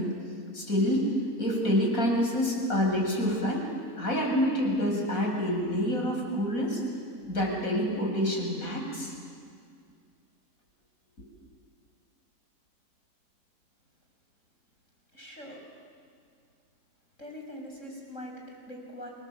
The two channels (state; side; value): late; right; 4.1 ms